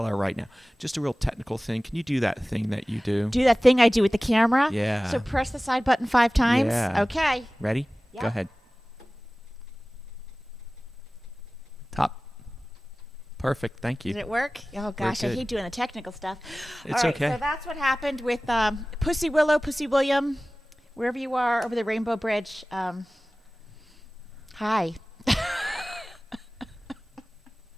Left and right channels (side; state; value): both; normal; correlation 0.98